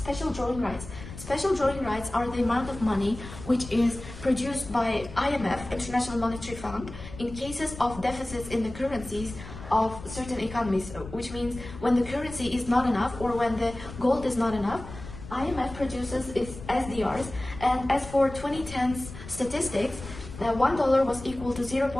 drawing rights. Special drawing rights are the amount of money which is produced by IMF, International Monetary Fund, in cases of deficits in the currencies of certain economies, which means when the currency is not enough or when the gold is not enough, IMF produces its SDRs. And as for 2010's statistics, $1 was equal to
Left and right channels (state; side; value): noise; left; rumble, 13 dB below the sound